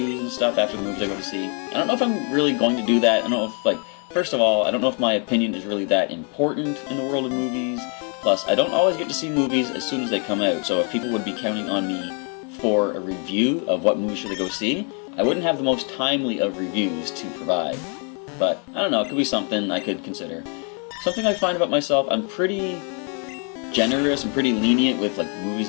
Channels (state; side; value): quieter; right; 38.7 dB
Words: and stuff after the movies I go to see. I don't know if I'm really going to do that. I don't know if, first of all, I don't know if my opinion is really that important in the world of movies. Plus, I don't always get to see movies as soon as they come out, so if people would be counting on me for a review of what movie should they go see, I wouldn't have the most timely of reviews to provide. But, I don't know, it could be something I could consider. Something I find about myself, I'm pretty generous and pretty lenient with movies